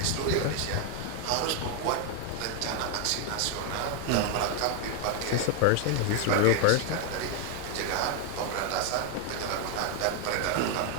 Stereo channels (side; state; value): both; different; correlation 0.01